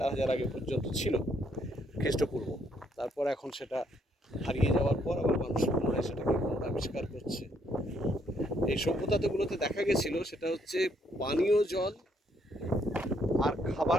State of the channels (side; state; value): both; normal; correlation 0.71